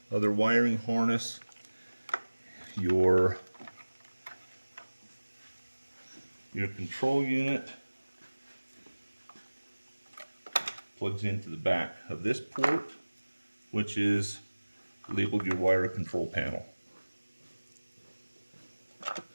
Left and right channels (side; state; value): both; inverted; correlation -1.00